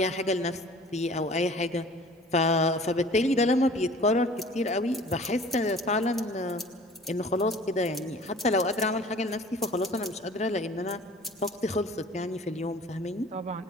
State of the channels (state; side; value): normal; both; correlation 0.47